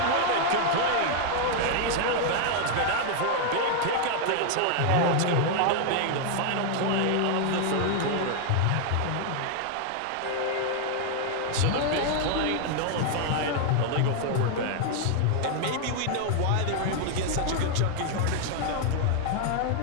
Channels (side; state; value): both; different; correlation 0.00